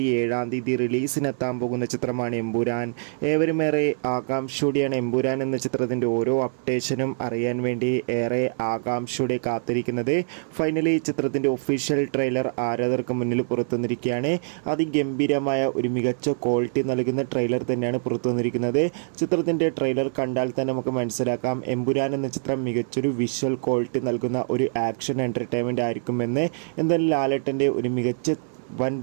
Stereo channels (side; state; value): left; silent; digital silence